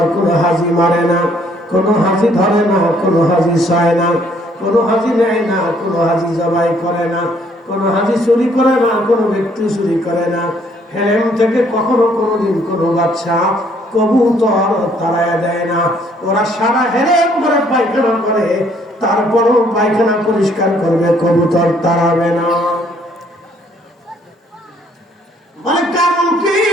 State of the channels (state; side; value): normal; both; correlation 0.65